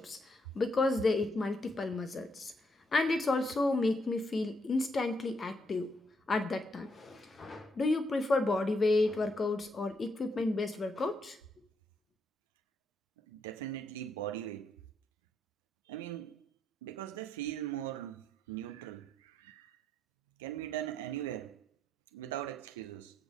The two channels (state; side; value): normal; both; correlation 0.77